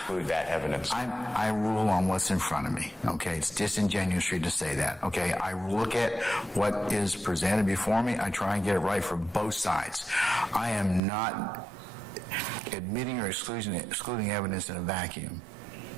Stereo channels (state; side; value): drops out; left; at 11.0 s